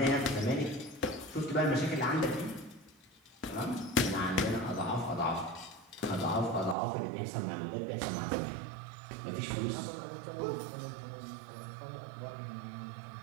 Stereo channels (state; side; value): drops out; left; at 6.8 s